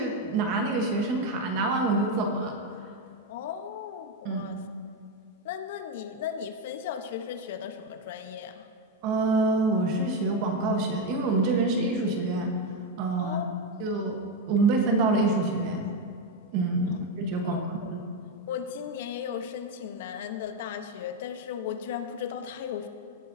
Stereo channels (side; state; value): both; normal; correlation 0.07